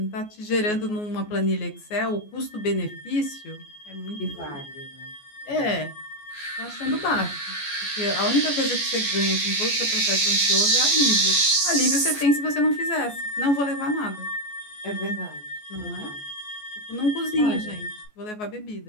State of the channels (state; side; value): late; right; 14 ms